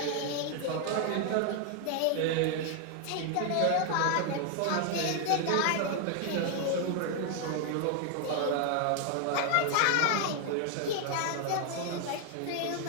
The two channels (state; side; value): different; both; correlation 0.00